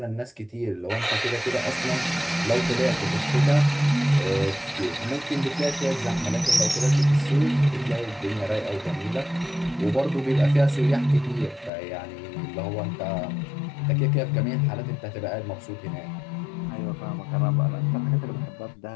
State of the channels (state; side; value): drops out; right; at 11.7 s